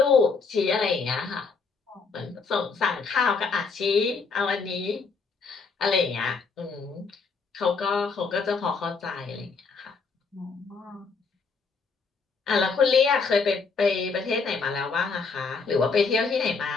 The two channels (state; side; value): quieter; right; 4.8 dB